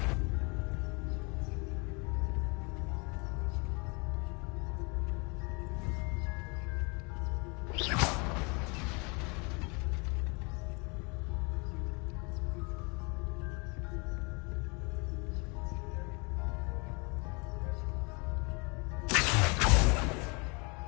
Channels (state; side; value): quieter; right; 30.9 dB